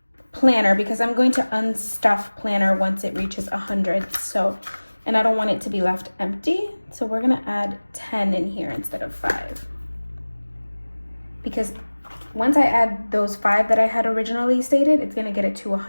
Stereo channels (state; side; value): inverted; both; correlation -1.00